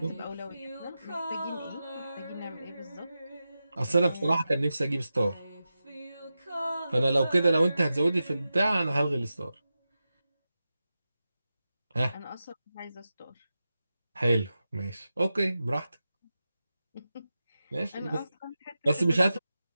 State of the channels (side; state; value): both; inverted; correlation -0.92